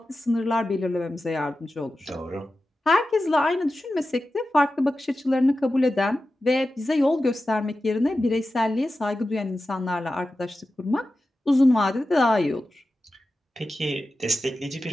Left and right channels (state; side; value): normal; both; correlation 0.93